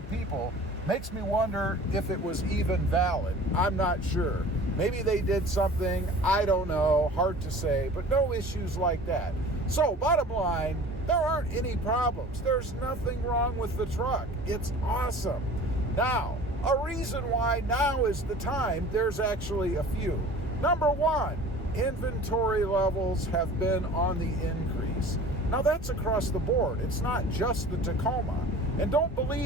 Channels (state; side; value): normal; both; correlation 0.43